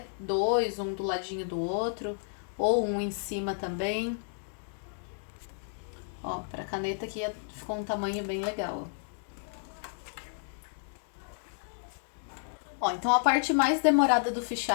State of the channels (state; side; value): silent; right; digital silence